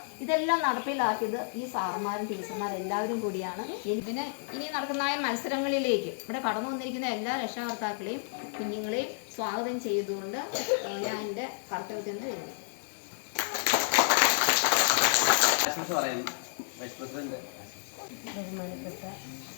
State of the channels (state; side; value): silent; right; digital silence